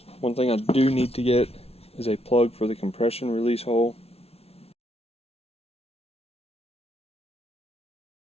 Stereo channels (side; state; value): right; late; 0.30 ms